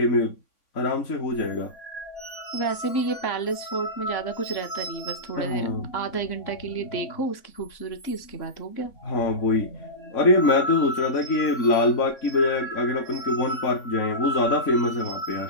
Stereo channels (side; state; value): right; late; 3.6 ms